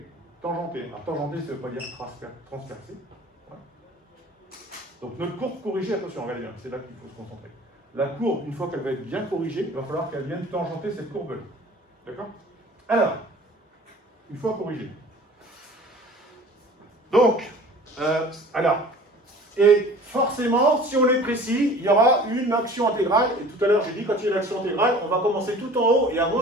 tangentée. Alors tangentée, ça ne veut pas dire transpercée. Voilà. Donc notre courbe corrigée, attention, regardez bien, c'est là qu'il faut se concentrer. La courbe, une fois qu'elle va être bien corrigée, il va falloir qu'elle vienne tangenter cette courbe-là. D'accord? Alors, une fois corrigée. Donc, et forcément, si on est précis, il y aura une action intégrale. Et tout à l'heure, j'ai dit, quand il y a une action intégrale, on va commencer tout en haut et à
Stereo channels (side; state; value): both; normal; correlation 0.45